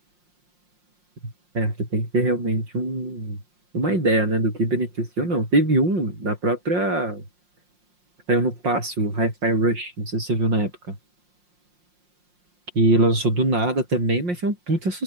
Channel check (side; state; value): left; late; 5.6 ms